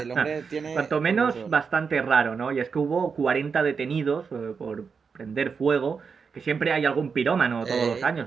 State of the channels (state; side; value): quieter; left; 5.7 dB